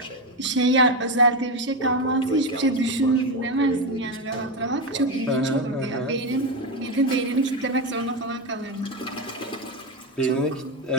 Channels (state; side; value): normal; both; correlation 0.13